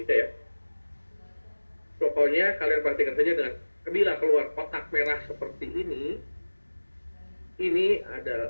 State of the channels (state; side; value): inverted; both; correlation -1.00